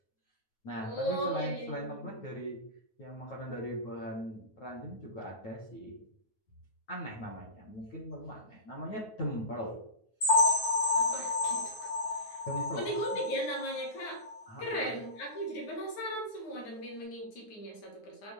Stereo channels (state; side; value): late; right; 9.3 ms